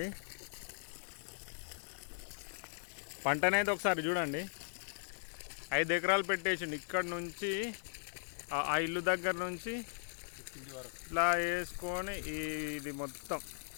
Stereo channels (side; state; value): right; silent; digital silence